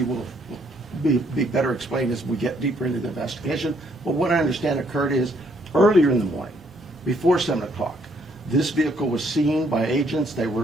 will be better explained as we get deeper into the investigation, but what I understand occurred is earlier in the morning, before 7 o'clock, this vehicle was seen by agents.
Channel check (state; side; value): normal; both; correlation 0.68